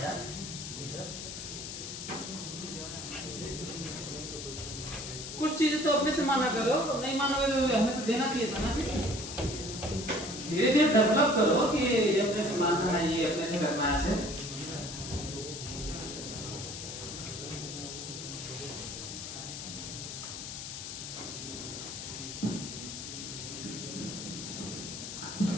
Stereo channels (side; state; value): left; noise; hiss, 8 dB below the sound